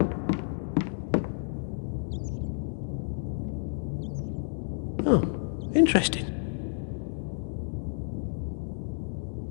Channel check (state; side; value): silent; right; digital silence